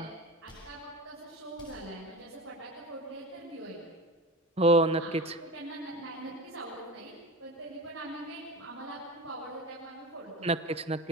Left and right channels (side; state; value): both; normal; correlation 0.29